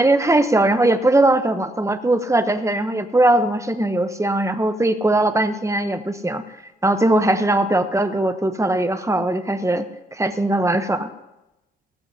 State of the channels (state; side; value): normal; both; correlation 0.76